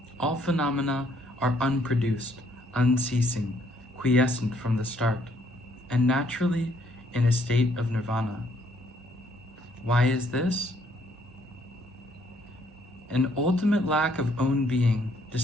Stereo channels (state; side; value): normal; both; correlation 0.67